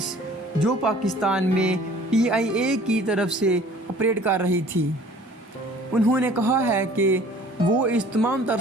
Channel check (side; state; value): both; normal; correlation 0.51